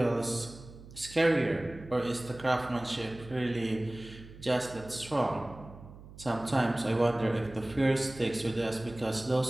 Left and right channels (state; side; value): noise; right; hum, 18 dB below the sound